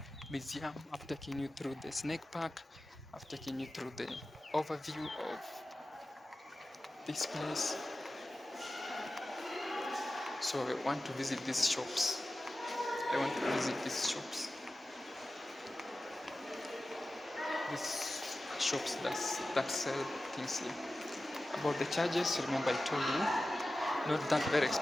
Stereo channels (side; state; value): both; normal; correlation 0.95